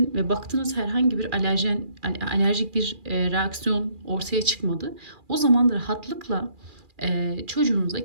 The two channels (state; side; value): late; left; 2.4 ms